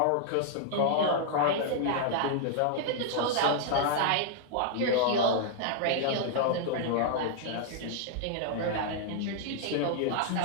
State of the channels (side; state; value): both; different; correlation -0.01